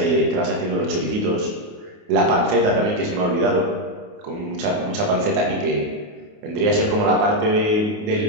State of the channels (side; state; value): left; late; 28 ms